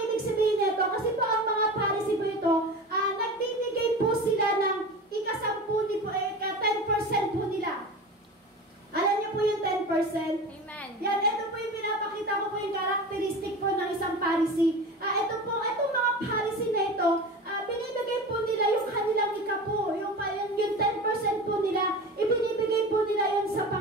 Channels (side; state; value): both; normal; correlation 0.31